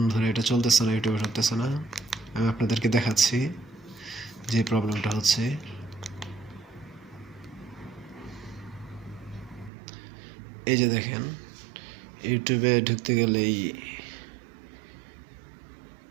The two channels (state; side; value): drops out; left; at 9.7 s